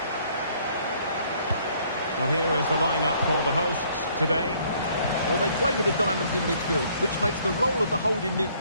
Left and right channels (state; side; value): inverted; both; correlation -0.63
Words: Well, here is the lineup for the hosts today. Well, they play with the diamonds in midfield, which makes the role of the holding